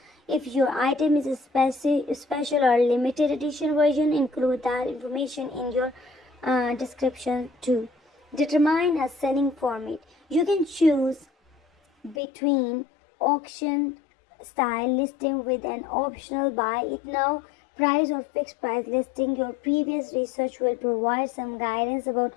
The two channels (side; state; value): right; drops out; at 12.2 s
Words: If your item is a special or limited edition version, include that information in your description too. Determine a selling format. You can choose between auction style listing with an optional buy it now price or fixed price listing. Your previous research will provide some guidance about